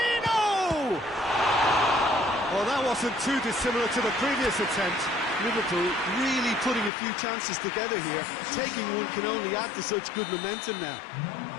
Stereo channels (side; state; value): right; drops out; at 6.9 s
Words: Well, that wasn't too dissimilar to the previous attempt. Liverpool really putting a few chances together here. Taking one can only add to such good momentum now.